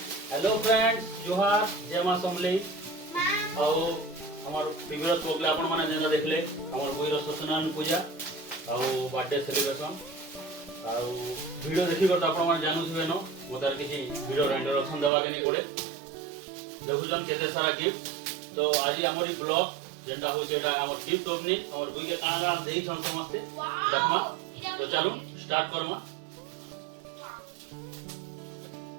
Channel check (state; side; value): drops out; left; at 15.1 s